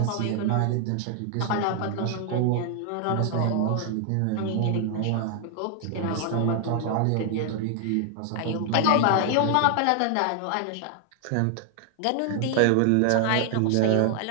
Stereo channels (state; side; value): different; both; correlation 0.00